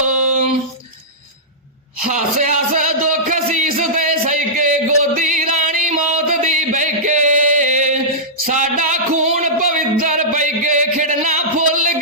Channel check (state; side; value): normal; both; correlation -0.15